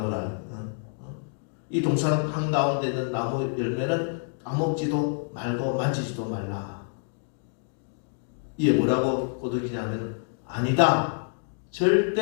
이 동산 한가운데 있는 나무 열매는 따먹지도 말고 만지지도 말라. 이게 뭐라고 꼬드기냐면 아니다,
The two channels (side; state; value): right; silent; digital silence